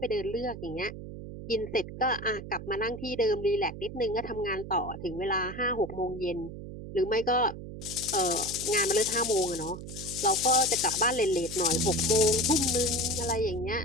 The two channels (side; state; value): right; noise; hum, 10 dB below the sound